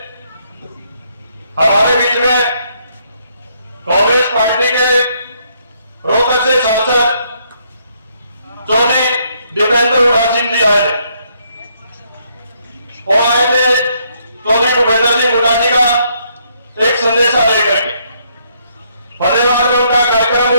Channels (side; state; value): both; inverted; correlation -0.71